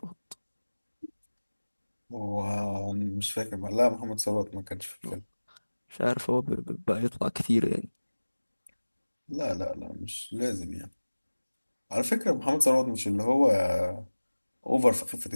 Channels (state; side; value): inverted; both; correlation -1.00